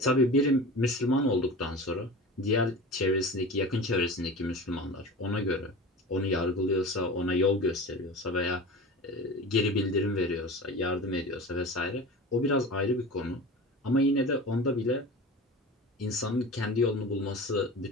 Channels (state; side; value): normal; both; correlation 0.33